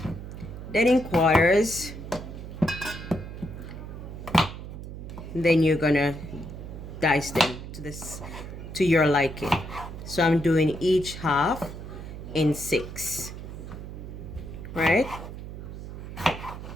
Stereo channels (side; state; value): right; noise; hum, 10 dB below the sound